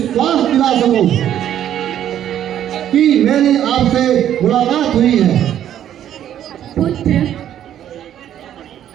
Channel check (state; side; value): quieter; left; 10.8 dB